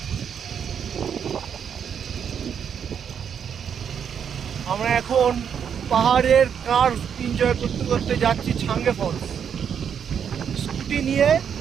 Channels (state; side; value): quieter; left; 7.8 dB